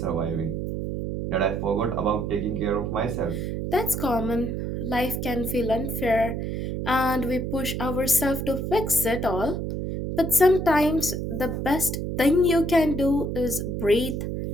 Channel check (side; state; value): right; noise; hum, 3 dB below the sound